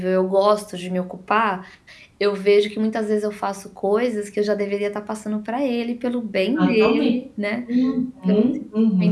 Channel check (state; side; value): identical; both; correlation 1.00